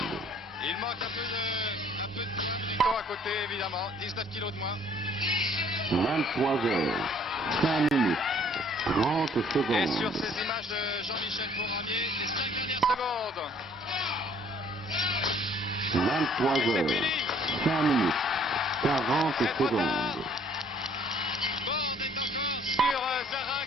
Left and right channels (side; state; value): both; normal; correlation 0.58